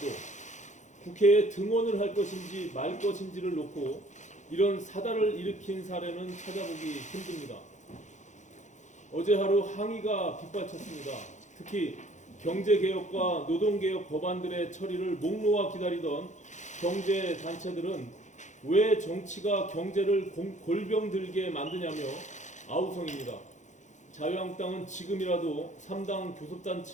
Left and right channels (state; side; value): late; right; 0.35 ms